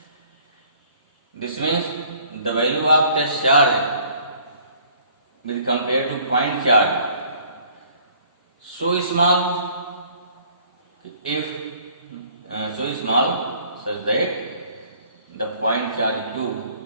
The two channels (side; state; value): both; inverted; correlation -0.57